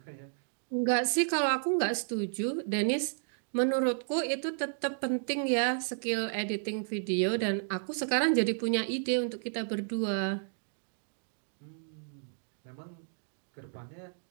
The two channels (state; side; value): silent; left; digital silence